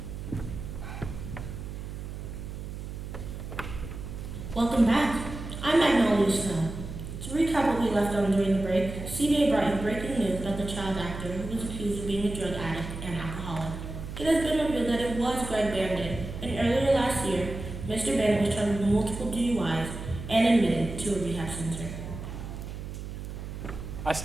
Welcome back. I'm Magnolia Snow. To recap what we left on during the break, CBA brought you breaking news about the child actor who was accused of being a drug addict and alcoholic. It has been revealed that it was Greg Bandit, and earlier last year, Mr. Bandit was charged with multiple DUIs and admitted to a rehab center. I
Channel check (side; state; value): right; noise; hum, 8 dB below the sound